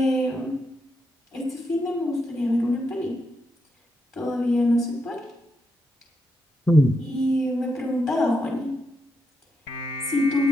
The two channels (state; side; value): normal; both; correlation 0.83